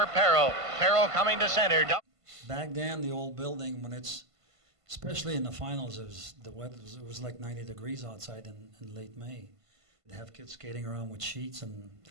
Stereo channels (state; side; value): late; left; 1.5 ms